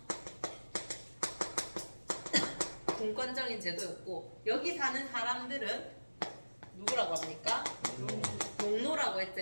분권적인 제도였고 여기 사는 사람들은 누구라고 합니까? 농노라고 했지.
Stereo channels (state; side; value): inverted; both; correlation -1.00